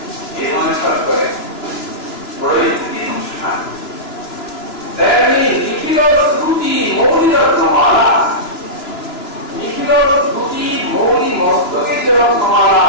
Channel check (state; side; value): late; right; 2.9 ms